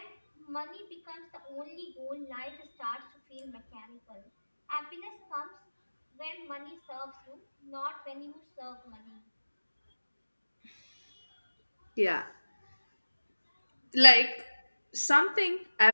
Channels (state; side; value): inverted; both; correlation -1.00